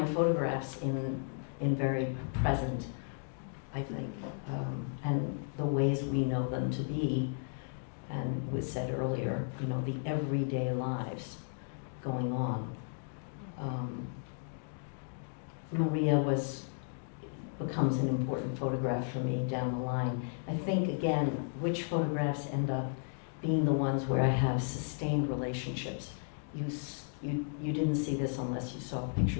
photographs, in very present, I think, and the ways we know them to be, and was said earlier, the everyday lives going on. Maria becomes an important photograph for me down the line. I think, again, which photographs end up being the ones where I have sustained relationships. You didn't see this unless you saw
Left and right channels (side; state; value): right; silent; digital silence